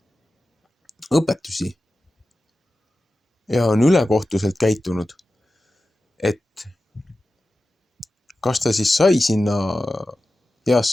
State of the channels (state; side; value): normal; both; correlation 0.94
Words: õpetusi ja on ülekohtuselt käitunud, et kas ta siis sai sinna